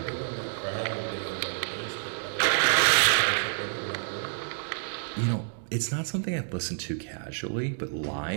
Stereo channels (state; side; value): silent; left; digital silence